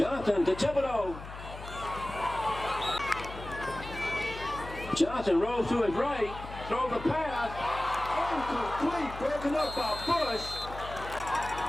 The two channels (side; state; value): left; noise; hum, 12 dB below the sound